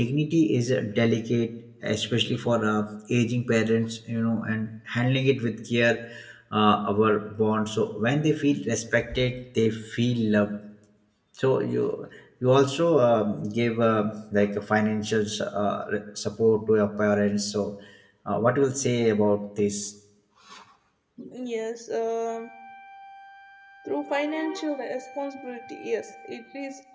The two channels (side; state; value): both; identical; correlation 1.00